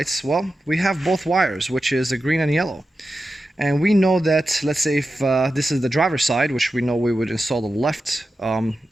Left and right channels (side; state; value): both; normal; correlation 0.92